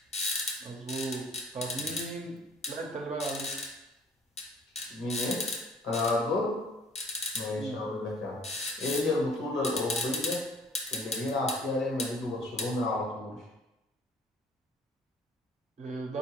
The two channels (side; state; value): both; normal; correlation 0.54